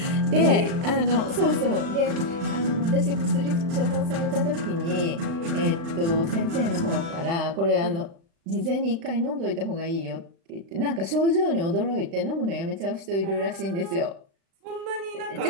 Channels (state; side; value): late; left; 36 ms